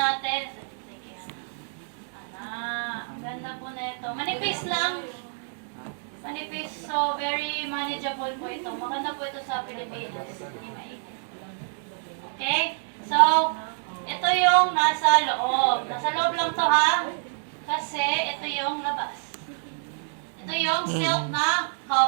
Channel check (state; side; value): silent; left; digital silence